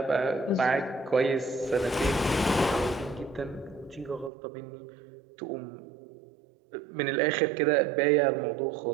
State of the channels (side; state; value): left; drops out; at 4.3 s